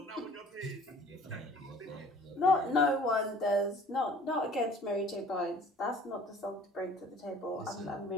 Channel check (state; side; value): normal; both; correlation 0.50